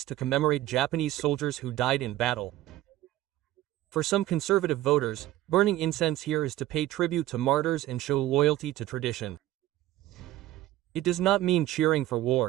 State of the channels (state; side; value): quieter; left; 14.9 dB